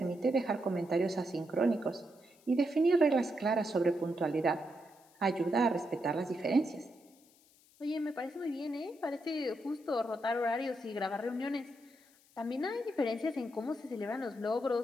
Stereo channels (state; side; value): noise; left; hiss, 29 dB below the sound